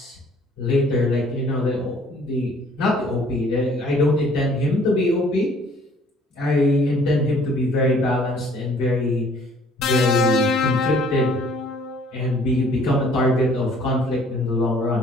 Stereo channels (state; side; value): normal; both; correlation 0.57